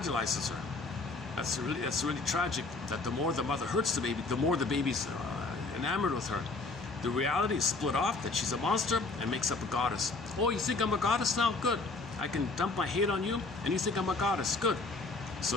her. That's really tragic, that the more the mother hurts the baby, the more the baby's enamored with her. The reality is split off, that she's a monster and makes up a goddess. Oh, you think I'm a goddess now? Good. I can dump my hate on you, and you think I'm a goddess. Good.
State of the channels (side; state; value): right; quieter; 3.6 dB